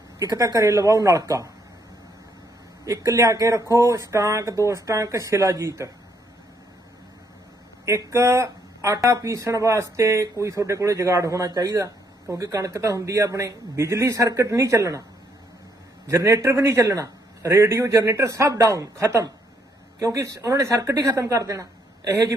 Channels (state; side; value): normal; both; correlation 0.71